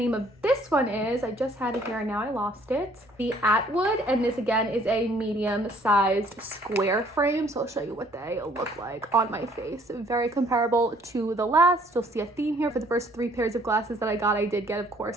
of this one is, I just had it here and now I lost it, the Atwood. And this again is a medium-sized square frame. So I'll show you what they look like on my face. Very comparable to the last. You'll see a theme here. For the first 3 pairs of glasses that I got, I did get, of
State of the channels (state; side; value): normal; both; correlation 0.60